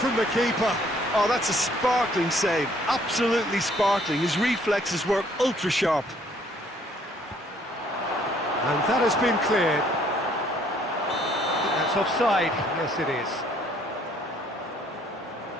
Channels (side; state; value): both; normal; correlation 0.63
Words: the keeper. Oh, that's a sparkling save, absolutely sparkling. His reflexes were ultra sharp. And that has been cleared. That's offside, yes it is.